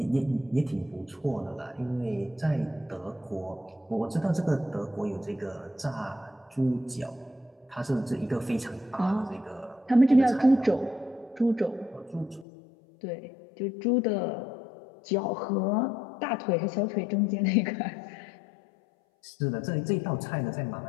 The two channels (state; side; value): drops out; right; at 12.5 s